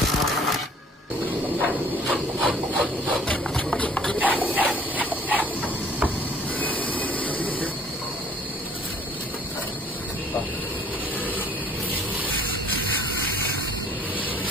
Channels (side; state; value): both; normal; correlation 0.56